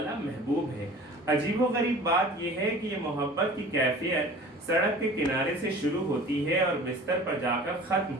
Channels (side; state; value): both; normal; correlation 0.43